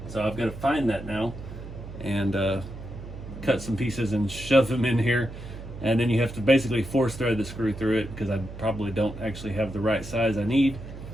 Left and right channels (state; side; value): noise; right; hum, 12 dB below the sound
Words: So I've got to find that now and cut some pieces and shove them in here. And then you have to basically force thread the screw through it, because I probably don't actually have the right size I need.